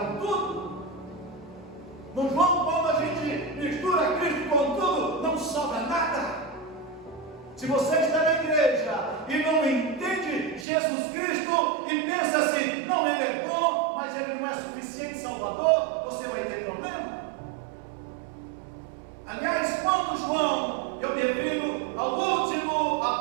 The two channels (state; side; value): drops out; left; at 10.7 s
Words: tudo. No João, quando a gente mistura Cristo com tudo, não sobra nada. Se você está na igreja e não entende Jesus Cristo e pensa assim: não, ele é bom, mas ele não é suficiente Salvador, você vai ter problema. Aliás, quando João, eu me refiro ao último